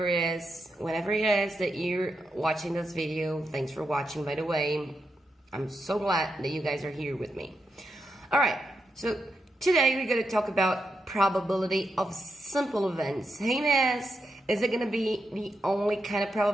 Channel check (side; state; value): both; normal; correlation 0.85